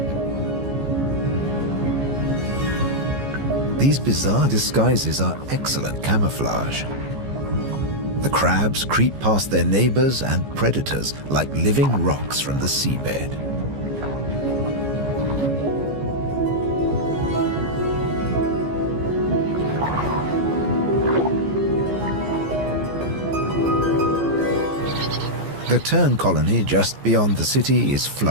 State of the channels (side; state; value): left; late; 14 ms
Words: These bizarre disguises are excellent camouflage. The crabs creep past their neighbors and predators like living rocks from the seabed. The tern colony just beyond the city is